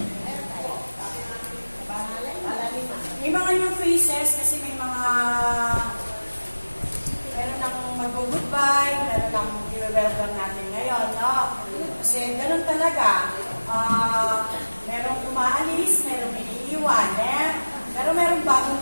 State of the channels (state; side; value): inverted; both; correlation -1.00